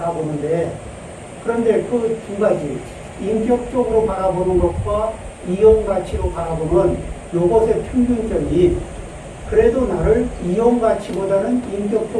그런데 그 두 가지, 인격적으로 바라보는 것과 이용 가치로 바라보는 요것의 평균점이 그래도 나를 이용 가치보다는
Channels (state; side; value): identical; both; correlation 1.00